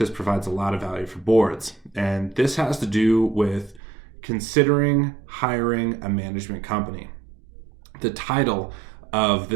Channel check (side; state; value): left; drops out; at 3.8 s